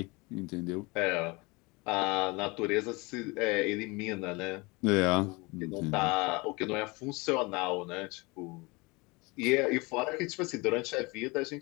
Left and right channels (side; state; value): right; quieter; 25.7 dB